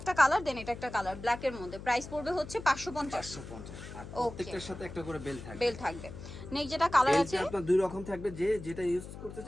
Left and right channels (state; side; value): noise; left; hum, 12 dB below the sound